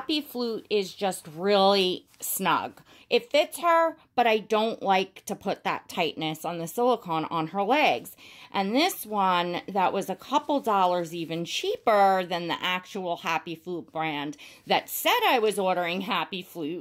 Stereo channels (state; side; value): identical; both; correlation 1.00